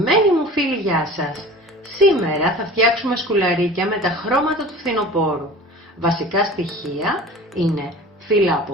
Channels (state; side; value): normal; both; correlation 0.40